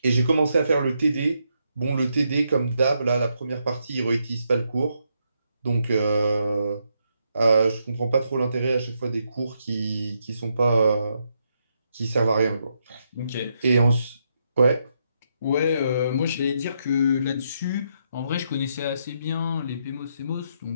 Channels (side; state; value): both; inverted; correlation -0.79